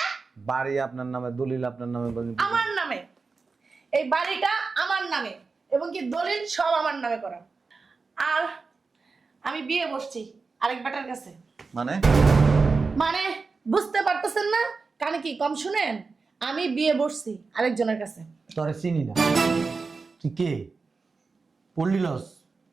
বাড়ি আপনার নামে, দলিল আপনার নামে। আমার নামে। এই বাড়িটা আমার নামে এবং কি দলিল সব আমার নামে করা। আর আমি বিয়ে বসছি আরেক বেটার কাছে। মানে? মানে বুঝতে পারতেছেন না? কানে কি কম শুনেন? আমি বিয়ে বসছি আরেকজনের কাছে। তোরে চিনি না তুই কে পড়লি লস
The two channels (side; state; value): left; quieter; 4.4 dB